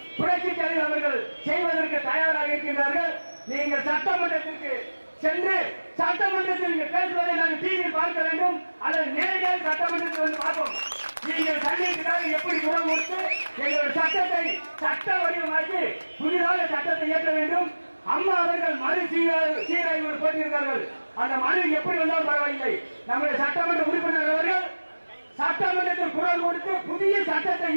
புரட்சி தலைவர் அவர்கள் செய்வதற்கு தயாராக இருக்கின்றார்கள். நீங்கள் சட்டமன்றத்திற்கு சென்று சட்டமன்றத்தில் பேசுவதை நாங்கள் டிவியில் பார்க்க வேண்டும் அல்லது நேரடியாக சட்டமன்றத்தில் வந்து பார்ப்போம். நீங்கள் சட்டத்திற்காக எப்படி குரல் கொடுத்து எங்களுடைய சட்டத்தை சட்ட வடிவமாக்கி புதிதாக சட்டத்தை இயற்ற வேண்டும். அம்மா அவர்கள் மறு சீராய்வு போட்டிருக்கிறார்கள். அந்த மனு எப்படி வந்தாலும் பரவாயில்லை. நம்முடைய சட்டமன்ற உறுப்பினர் அவர்கள் சட்டமன்றத்தில் குரல் கொடுத்து புதிய சட்டத்தை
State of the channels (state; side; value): inverted; both; correlation -1.00